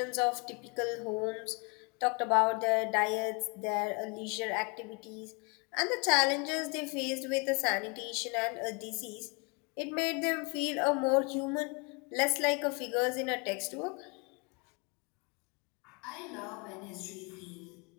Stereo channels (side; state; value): right; quieter; 32.8 dB